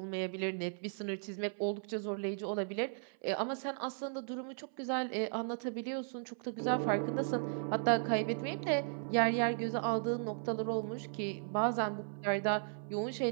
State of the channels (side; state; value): left; silent; 54 dB below the other